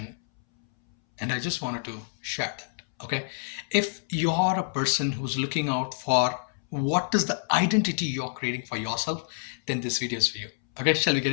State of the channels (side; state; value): right; silent; 60 dB below the other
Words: and I just wanted to share that. Okay, if you're a person who's looking out for what is the identity you're creating for yourself, then this video is for you. Okay, shall we get